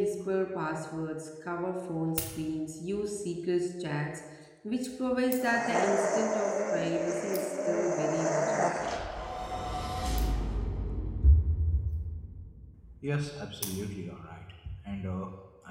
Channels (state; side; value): identical; both; correlation 1.00